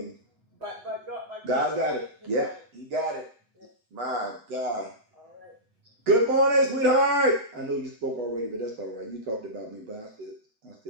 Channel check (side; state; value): left; late; 8.0 ms